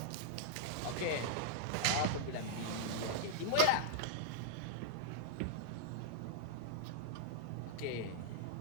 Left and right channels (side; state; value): both; different; correlation -0.01